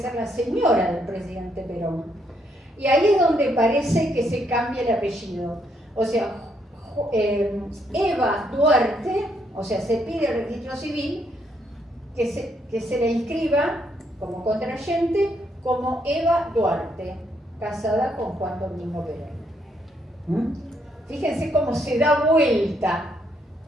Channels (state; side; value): normal; both; correlation 0.74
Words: la señora del presidente Perón. Y ahí es donde parece que se cambia el apellido. O sea, Eva Duarte, o sea, se pide al registro civil que se le inscriba como contrayente como Eva Duarte, casada con Juan Domingo Perón. Fíjense cómo se da vuelta,